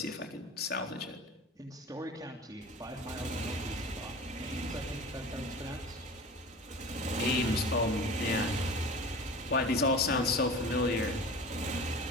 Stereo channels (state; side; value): normal; both; correlation 0.36